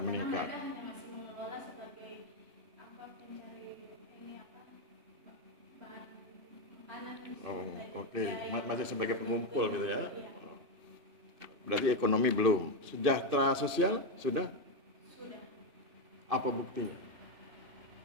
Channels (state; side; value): late; left; 2.6 ms